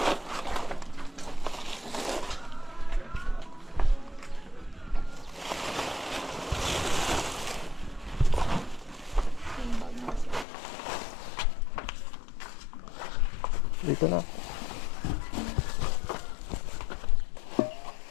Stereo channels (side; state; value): right; drops out; at 10.5 s